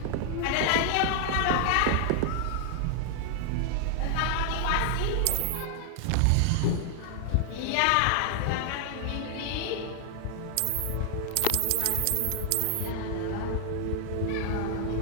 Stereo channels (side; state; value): both; different; correlation 0.00